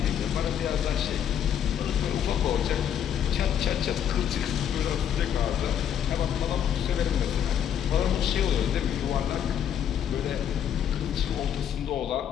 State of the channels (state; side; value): quieter; right; 9.2 dB